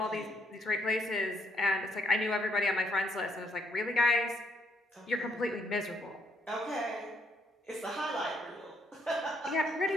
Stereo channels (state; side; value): normal; both; correlation 0.71